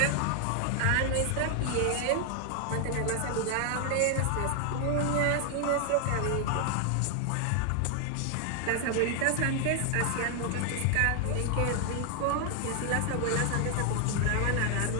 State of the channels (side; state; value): both; different; correlation 0.00